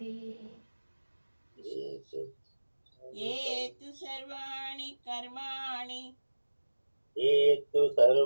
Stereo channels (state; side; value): inverted; both; correlation -1.00